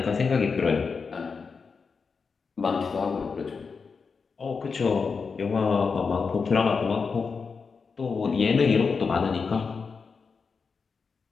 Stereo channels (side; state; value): right; quieter; 5.2 dB